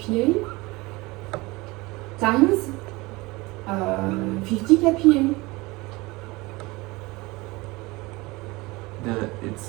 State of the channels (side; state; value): left; quieter; 22.8 dB